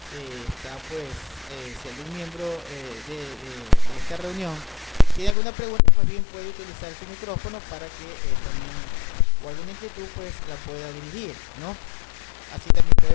Está si algún miembro de esta reunión tiene alguna pregunta, pues bien puede utilizar su micrófono para que también, o alguna inquietud, pues la pueda dirigir, ¿no? Así también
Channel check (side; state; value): right; drops out; at 5.4 s